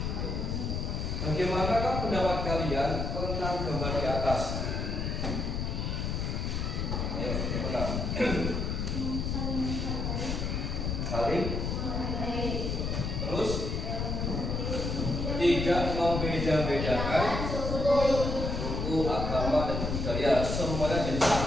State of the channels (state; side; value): noise; left; rumble, 1 dB below the sound